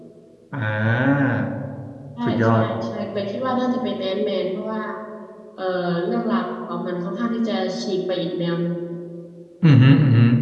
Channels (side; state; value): both; identical; correlation 1.00